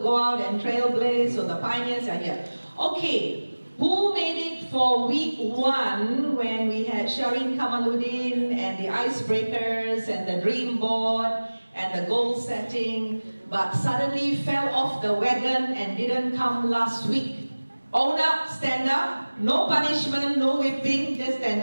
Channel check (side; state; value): both; inverted; correlation -1.00